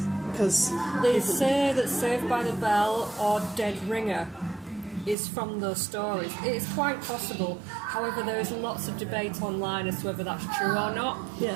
because they say that Saved by the Bell or Dead Ringer is from those stories. It is quite possible. However, there is lots of debate online as to whether that's true or not.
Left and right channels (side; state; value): left; drops out; at 5.2 s